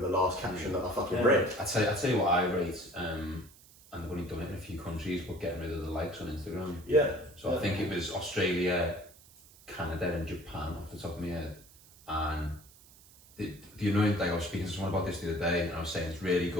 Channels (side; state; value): right; noise; hiss, 24 dB below the sound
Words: last caption that I fucking read. I tell you what I rate, and I've only done it in a few countries, but getting rid of the likes on Instagram. Yeah. So I think it was Australia, Canada, and Japan off the top of my head. And the annoying thing, I was speaking to someone about this the other day, and I was saying it's really